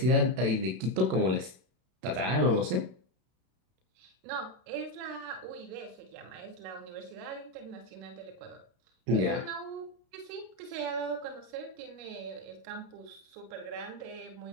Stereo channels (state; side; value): late; left; 32 ms